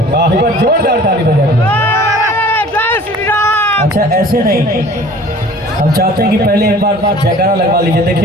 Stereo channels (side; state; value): both; normal; correlation 0.47